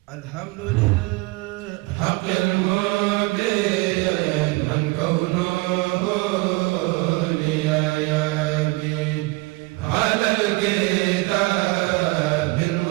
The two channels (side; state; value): left; quieter; 24.4 dB